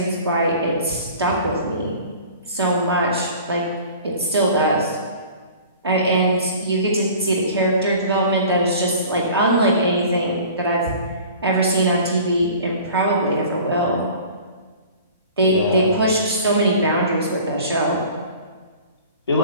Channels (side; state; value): both; inverted; correlation -0.45